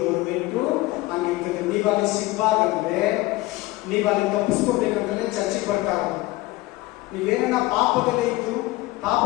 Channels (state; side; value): quieter; right; 19.6 dB